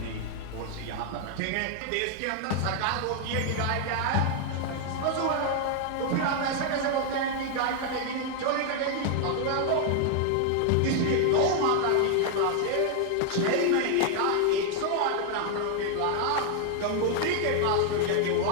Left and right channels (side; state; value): both; different; correlation 0.00